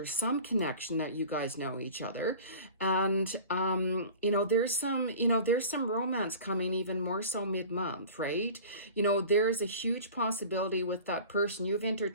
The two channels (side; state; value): both; inverted; correlation -0.40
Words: some connection that you guys know each other. And, there's some romance coming even more so mid-month, right? There's a huge possibility with that person you've